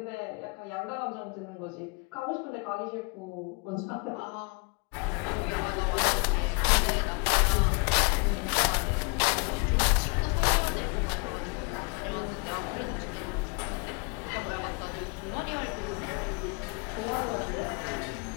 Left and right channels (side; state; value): right; quieter; 32.1 dB